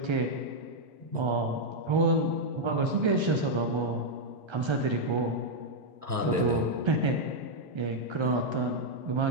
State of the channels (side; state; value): left; late; 1.3 ms